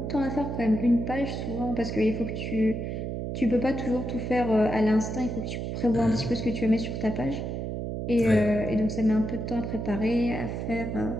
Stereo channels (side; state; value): right; noise; hum, 4 dB below the sound